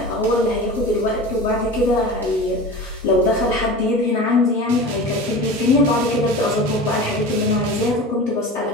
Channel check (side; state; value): both; normal; correlation 0.33